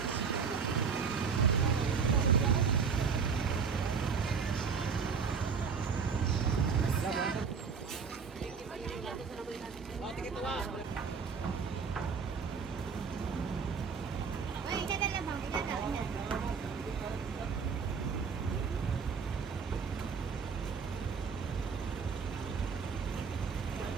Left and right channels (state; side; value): quieter; left; 5.8 dB